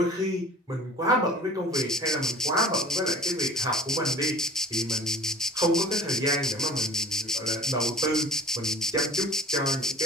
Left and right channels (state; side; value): normal; both; correlation 0.43